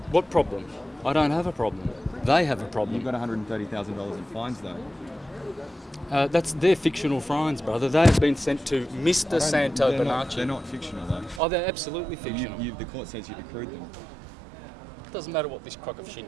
What problem? I don't have a problem. They have a problem. You've got $130,000 in fines, though. That's their fictional fines, brother. They've been sent to Mr. Santos Bonacci. They're not fictional, though. Oh, they're absolutely fictional. The court says you've accrued them. It doesn't matter what this crock of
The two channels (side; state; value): left; drops out; at 11.4 s